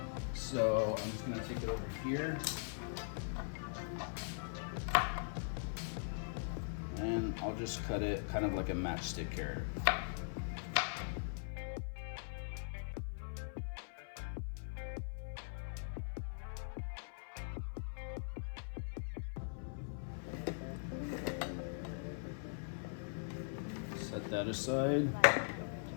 So I'm just gonna take it over here. And I'll just cut it kind of like a matchstick carrot. Set that aside.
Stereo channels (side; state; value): right; silent; 50 dB below the other